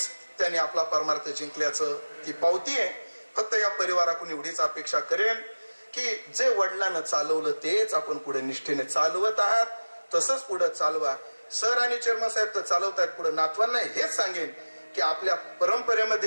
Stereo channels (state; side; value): inverted; both; correlation -1.00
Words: त्यांनी आपला परमार्थ जिंकल्याचं ती पावती आहे. फक्त या परिवाराकडून एवढीच अपेक्षा करेन की जे वडिलांना चालवलं तेच आपण पुढे निष्ठेने चालवत आहात, तसंच पुढे चालवा. सर आणि चेअरमन साहेब तर चालवतायत पुढे. नातवांना हेच सांगेन की आपल्या